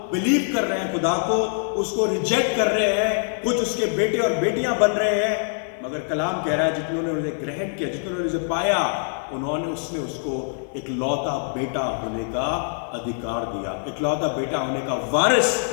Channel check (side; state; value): right; silent; 56 dB below the other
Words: बिलीव कर रहे हैं खुदा को, उसको रिजेक्ट कर रहे हैं, कुछ उसके बेटे और बेटियां बन रहे हैं। मगर कलाम कह रहा है, जितने उसे ग्रहण किया, जितने उसे पाया, उसने उसको एक लौता बेटा होने का अधिकार दिया, एक लौता बेटा होने का वारिस